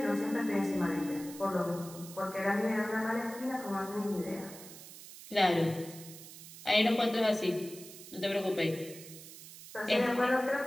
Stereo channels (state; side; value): noise; right; hiss, 15 dB below the sound